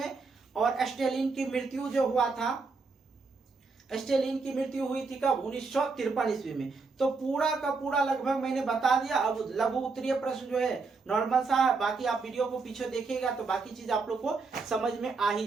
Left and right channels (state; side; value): quieter; left; 4.3 dB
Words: और स्टेलिन की मृत्यु जो हुआ था, स्टेलिन की मृत्यु हुई थी कब, 1953 ईस्वी में। तो पूरा का पूरा लगभग मैंने बता दिया। अब लघु उत्तरीय प्रश्न जो है नॉर्मल सा है, बाकी आप वीडियो को पीछे देखिएगा तो बाकी चीज आप लोग को समझ में आ